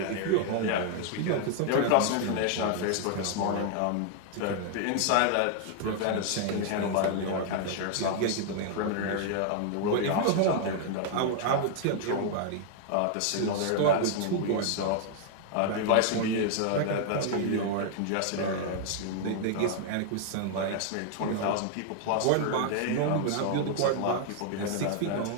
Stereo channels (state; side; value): different; both; correlation 0.00